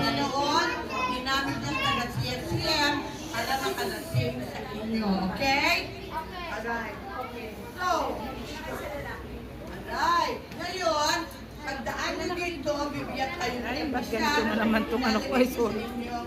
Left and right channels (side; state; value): both; identical; correlation 1.00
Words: ginamit niya taga CFCM para makalasim sa inyo. Okay? Alright. Okay. So, alright. Ngayon, pagdaan niyo dito, bibigyan kayo ng Ay, ba't ganito na naman itong ano ko, ay, sorry.